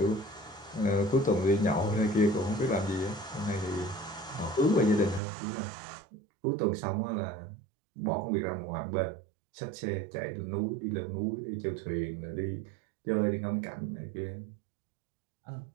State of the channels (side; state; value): left; drops out; at 5.2 s